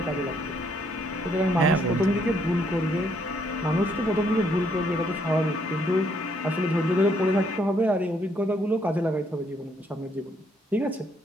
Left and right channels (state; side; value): normal; both; correlation 0.70